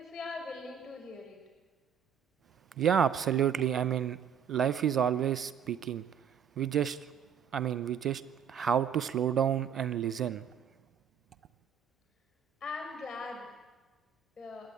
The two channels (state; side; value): quieter; left; 8.0 dB